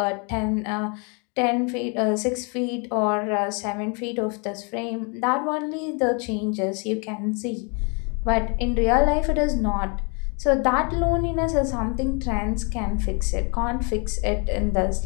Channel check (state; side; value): quieter; right; 34.6 dB